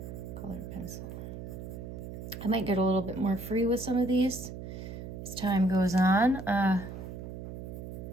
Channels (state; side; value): noise; right; hum, 9 dB below the sound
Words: colored pencil. I might get a little bit more free with some of these as time goes on.